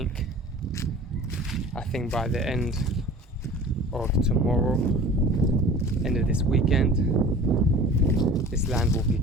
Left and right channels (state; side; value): normal; both; correlation 0.43